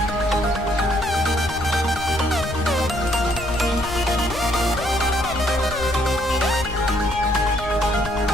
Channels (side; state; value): left; noise; rumble, 10 dB below the sound